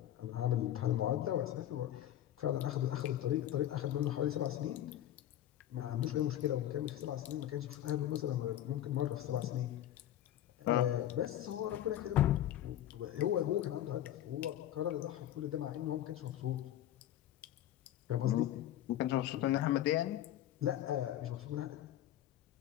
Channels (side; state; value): right; quieter; 12.2 dB